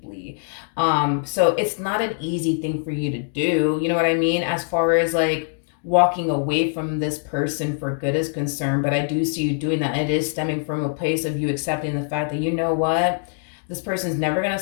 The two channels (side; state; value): right; silent; digital silence